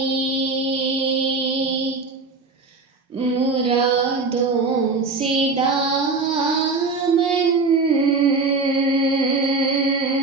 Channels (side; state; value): left; quieter; 3.9 dB